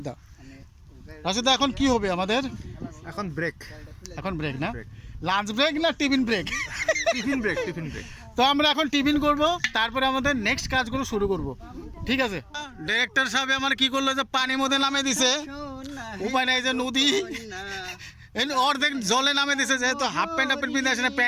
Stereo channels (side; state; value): both; identical; correlation 1.00